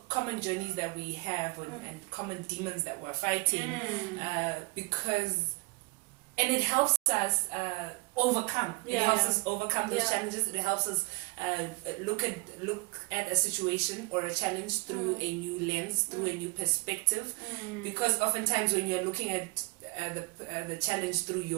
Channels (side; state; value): left; quieter; 28.3 dB